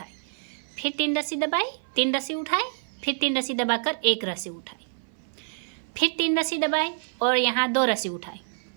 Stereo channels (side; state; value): left; silent; 56 dB below the other